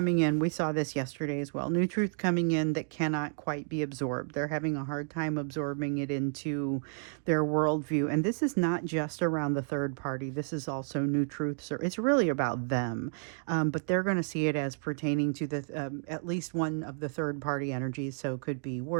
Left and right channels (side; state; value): left; silent; digital silence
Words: in. We saw this yesterday as well. New truth coming in that cannot quite be absorbed. They're having a hard time absorbing it into their worldview. And this is not just around the third party. This is also new truths. It's really about them. But they're going to see it as pertaining to the at least one of the third party energies. So it could be